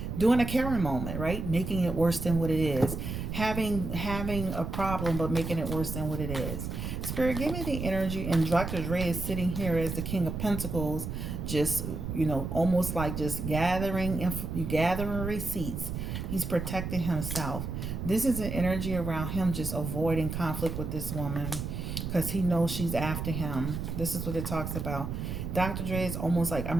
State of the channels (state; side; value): noise; right; rumble, 5 dB below the sound